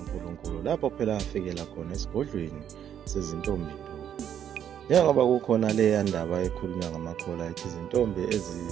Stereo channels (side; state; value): left; quieter; 9.5 dB